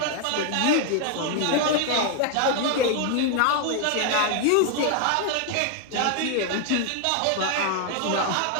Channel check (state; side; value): different; both; correlation 0.00